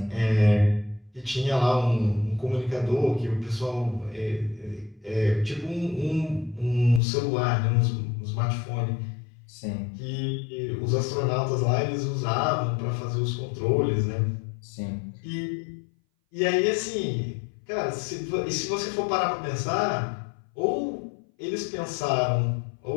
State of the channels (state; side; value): drops out; right; at 7.0 s